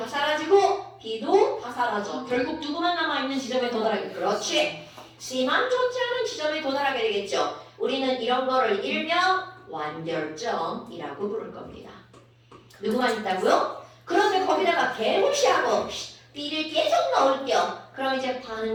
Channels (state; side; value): identical; both; correlation 1.00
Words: 사라지고 B도 다 사라져. 결국 누구만 남아있는 지점에 도달하게. 그렇지. C만 존재하는 지점에 도달하게 되겠죠. 우리는 이런 거를 일명 완결점이라고 부를 겁니다. 누구만 있다고요? 그런데 거기다가 개무시하고 B를 계속 넣을게요. 그럼 이제